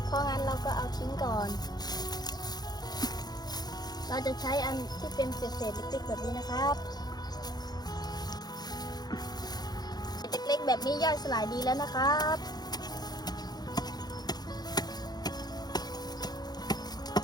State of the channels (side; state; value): right; late; 0.19 ms